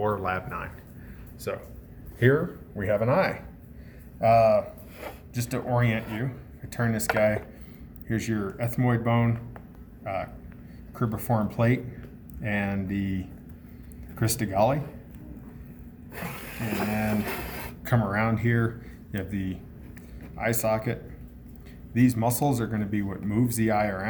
Lab 9. So here we have an eye. Just to orient you, I turn this guy, here's your ethmoid bone, cribriform plate, and the crista galli. And then come around here, you have the eye socket. These muscles are going to be what moves the eye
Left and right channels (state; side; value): identical; both; correlation 1.00